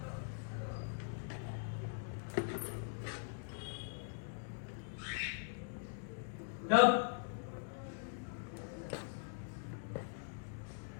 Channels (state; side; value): silent; right; digital silence